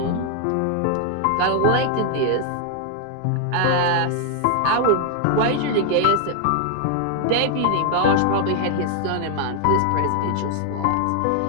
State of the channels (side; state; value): both; different; correlation 0.00